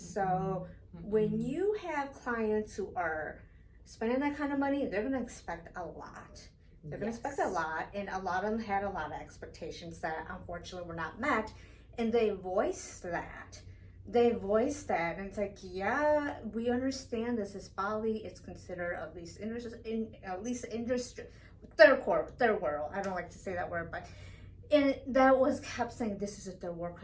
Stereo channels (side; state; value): both; identical; correlation 1.00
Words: when you have clients who are spending that kind of money, they're going to expect a lot. They're going to expect a lot, and a lot of them had a lot of expectations that unfortunately were not met, and they voiced that. they voiced that, and it's like, yeah, we understand this is Bali. It's considered at least industry, third world. I don't like to say that word, but and that was kept saying this is a third world